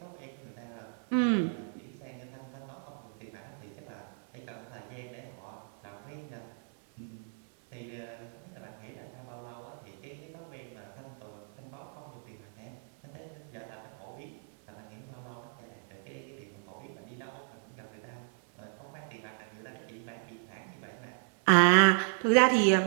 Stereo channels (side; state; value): left; silent; 55 dB below the other